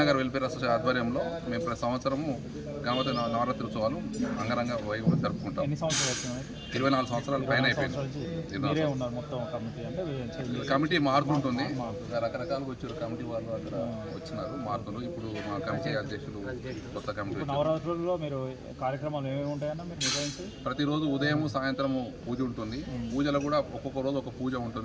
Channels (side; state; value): both; identical; correlation 1.00